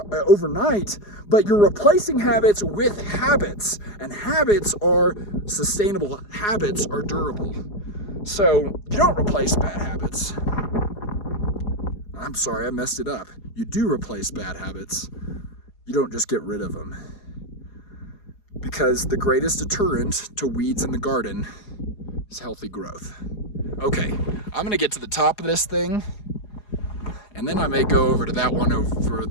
but you're replacing habits with habits, and habits are sustainable, habits are durable. So you don't replace bad habits. I'm sorry, I messed it up. You do replace bad habits. You don't just get rid of them. Because the greatest deterrent to weeds in the garden is healthy growth. Okay, I'm gonna get to the top of this thing, and then I may go over to that one over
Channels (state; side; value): late; right; 4.8 ms